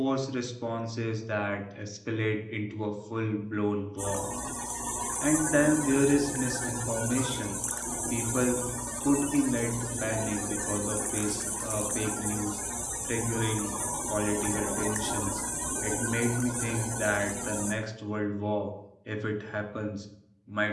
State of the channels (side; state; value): both; identical; correlation 1.00